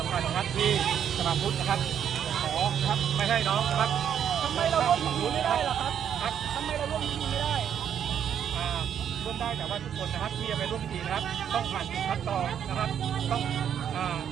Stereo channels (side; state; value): left; quieter; 8.9 dB